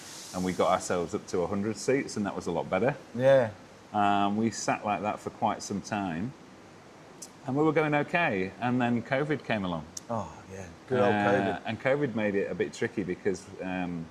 and we got ourselves up to 100 seats, and that was a lot better. Yeah. We sat like that for quite some time, and we were going okay, and then COVID came along. Oh, yeah, good old COVID. And COVID made it a bit tricky because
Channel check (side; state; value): both; identical; correlation 1.00